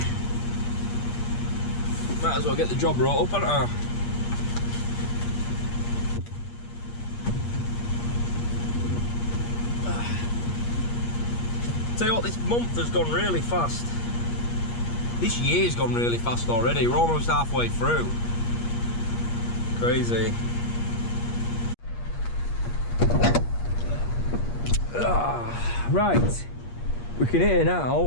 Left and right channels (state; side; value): late; right; 8.5 ms